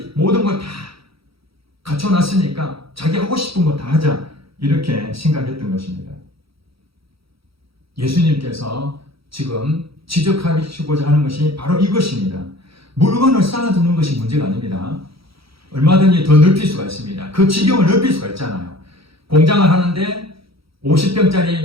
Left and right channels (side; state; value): left; late; 0.76 ms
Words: 모든 걸 다 갖춰놨으니까 자기 하고 싶은 거 다 하자. 이렇게 생각했던 것입니다. 예수님께서 지금 지적하시고자 하는 것이 바로 이것입니다. 물건을 쌓아두는 것이 문제가 아닙니다. 얼마든지 더 넓힐 수가 있습니다. 그 지경을 넓힐 수가 있잖아요. 공장을 하는데